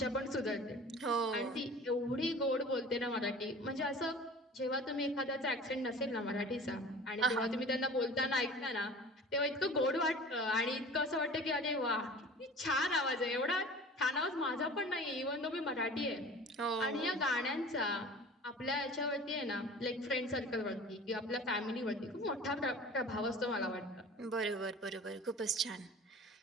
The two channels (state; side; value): normal; both; correlation 0.42